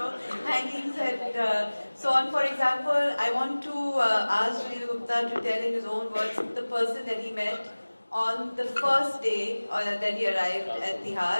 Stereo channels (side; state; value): both; inverted; correlation -1.00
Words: hangings and so on. For example, I want to ask Sunil Gupta to tell in his own words the person that he met on the first day that he arrived at Tihar,